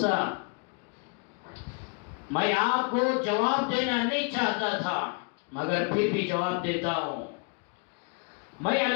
میں آپ کو جواب دینا نہیں چاہتا تھا مگر پھر بھی جواب دیتا ہوں، میں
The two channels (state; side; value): quieter; right; 35.5 dB